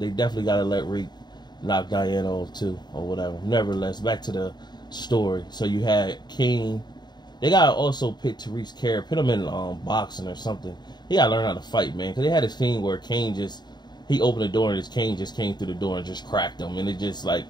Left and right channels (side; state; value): right; late; 0.21 ms